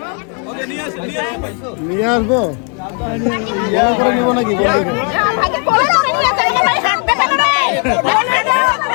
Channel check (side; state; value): right; quieter; 38.4 dB